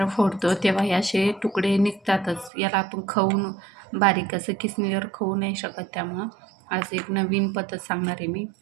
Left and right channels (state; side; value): drops out; left; at 2.5 s